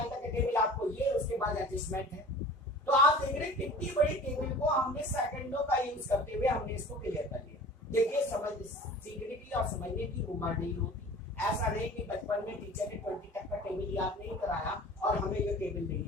तक के टेबल आपको ये, उसके बाद एडजस्टमेंट है। तो आप देख रहे हैं कितनी बड़ी टेबल को हमने सेकंडों का यूज करते हुए हमने इसको क्लियर कर लिया। देखिए, समझ सीखने की और समझने की उम्र नहीं होती। ऐसा नहीं कि बचपन में टीचर ने 20 तक का टेबल याद नहीं कराया और हमें ये टेबल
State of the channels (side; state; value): both; normal; correlation 0.42